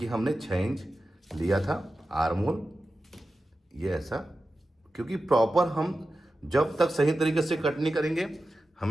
हमने 6 इंच लिया था आर मोल, ये ऐसा, क्योंकि प्रॉपर हम जब तक सही तरीके से कट नहीं करेंगे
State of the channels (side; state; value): both; normal; correlation 0.93